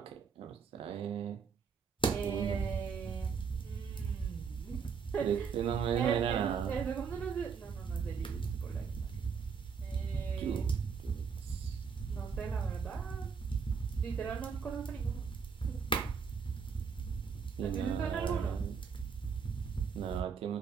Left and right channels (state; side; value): quieter; left; 6.1 dB